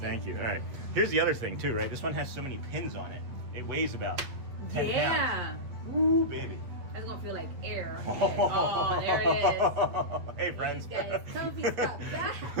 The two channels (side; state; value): left; late; 8.3 ms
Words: you. All right. Here's the other thing too, right? This one has so many pins on it. It weighs about 10 pounds. Ooh, baby. That's gonna feel like air. Oh, there it is. Hey, friends. That is comfy stuff.